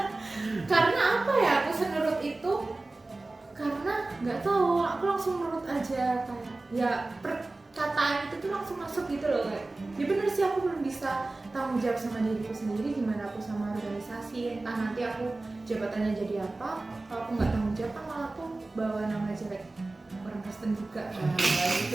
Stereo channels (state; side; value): quieter; left; 3.1 dB